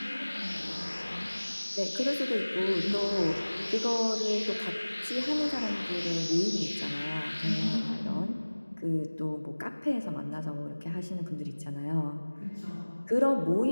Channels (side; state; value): both; inverted; correlation -1.00